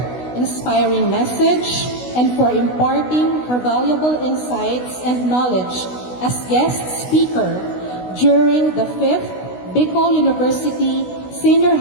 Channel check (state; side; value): late; right; 16 ms